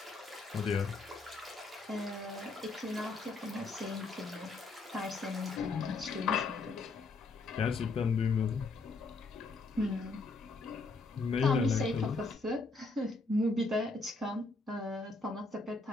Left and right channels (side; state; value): right; quieter; 3.7 dB